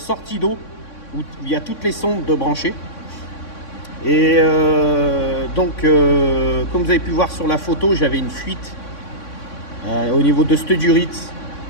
d'eau où il y a toutes les sondes de branchées. Et comme vous avez pu voir sur la photo, j'avais une fuite au niveau de cette durite.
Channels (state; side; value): late; right; 3.6 ms